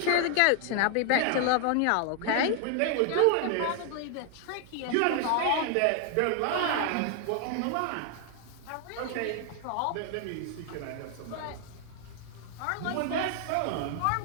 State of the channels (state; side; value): different; both; correlation 0.00